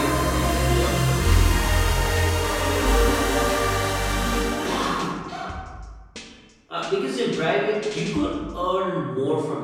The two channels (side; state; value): both; identical; correlation 1.00